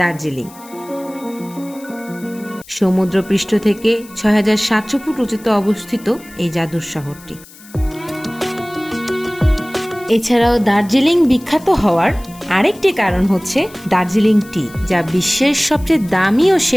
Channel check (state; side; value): noise; left; hiss, 22 dB below the sound